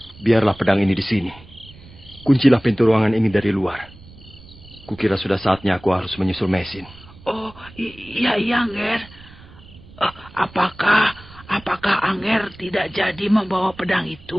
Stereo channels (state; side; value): noise; right; rumble, 21 dB below the sound